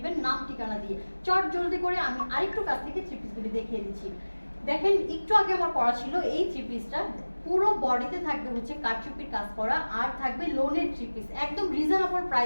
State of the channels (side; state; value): both; inverted; correlation -1.00